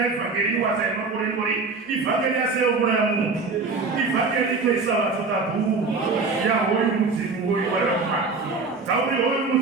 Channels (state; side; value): quieter; left; 4.2 dB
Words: ivhangeri wasaimangorengori ivhangeri yaseomura yamuntu ivhangeri itoisa vatotabhuru yahoyu mudzimu hoyu warapa tauri hoyu